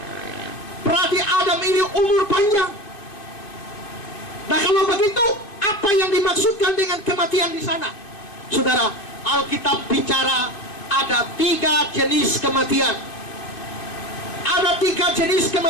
Berarti Adam ini umur panjang. Nah, kalau begitu, apa yang dimaksudkan dengan kematian di sana? Saudara, Alkitab bicara ada 3 jenis kematian. Ada 3 jenis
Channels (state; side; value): late; right; 2.5 ms